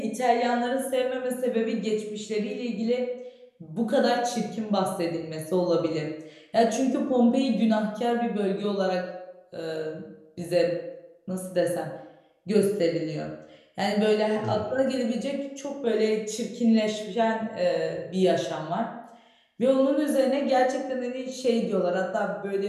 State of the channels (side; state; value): both; identical; correlation 1.00